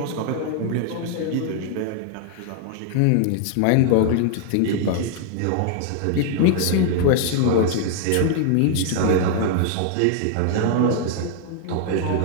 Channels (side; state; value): both; different; correlation 0.00